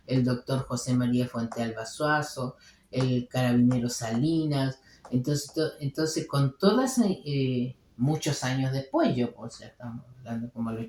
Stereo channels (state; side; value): identical; both; correlation 1.00